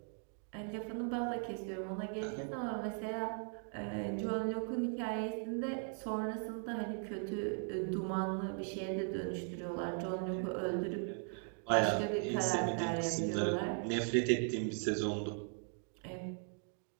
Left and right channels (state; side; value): silent; left; 52 dB below the other